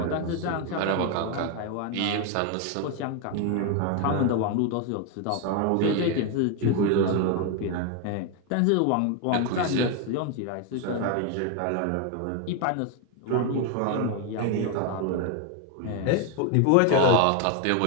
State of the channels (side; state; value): both; different; correlation 0.01